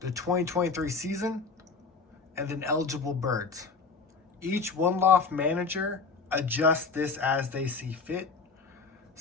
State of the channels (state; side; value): quieter; right; 4.7 dB